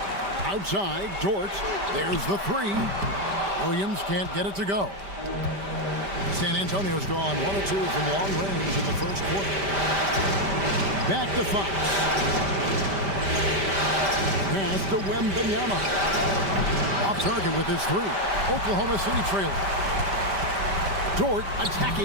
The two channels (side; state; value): left; late; 5.1 ms